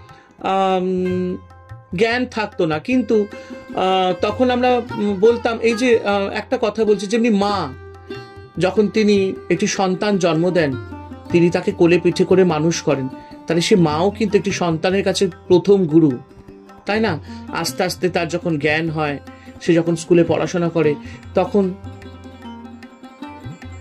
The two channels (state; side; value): identical; both; correlation 1.00